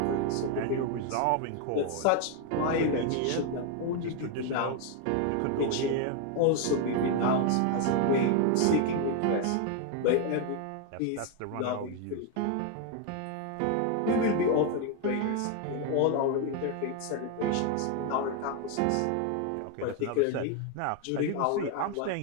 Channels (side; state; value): both; different; correlation 0.01